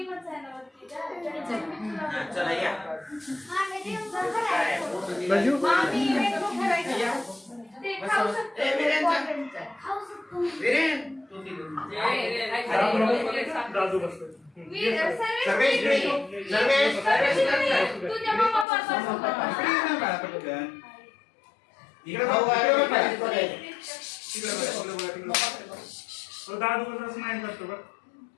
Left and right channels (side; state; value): right; drops out; at 18.7 s